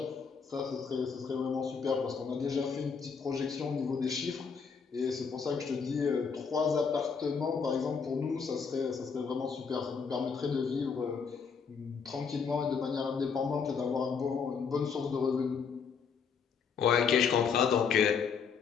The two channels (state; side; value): quieter; right; 6.0 dB